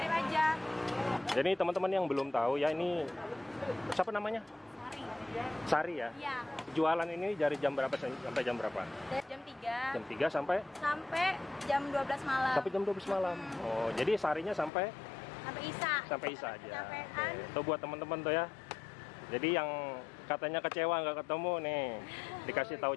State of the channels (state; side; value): drops out; right; at 14.7 s